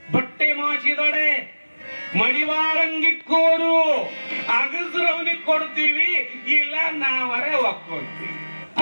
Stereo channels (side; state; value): both; inverted; correlation -1.00